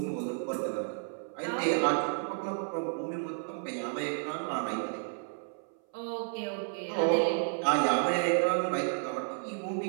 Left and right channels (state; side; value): silent; left; 57 dB below the other